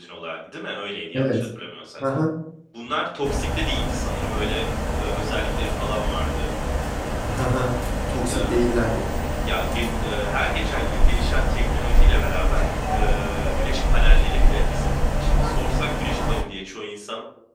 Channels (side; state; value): both; identical; correlation 1.00